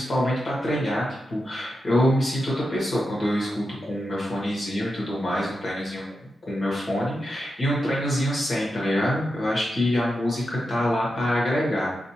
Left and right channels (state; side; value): normal; both; correlation 0.88